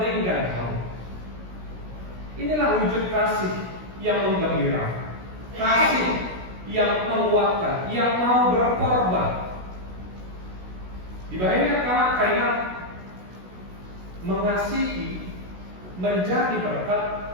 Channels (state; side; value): late; left; 16 ms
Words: kamu. Inilah wujud kasih yang menggembirakan, kasih yang menguatkan, yang mau berkorban. Dibayangkan karena mengasihi menjadi berkat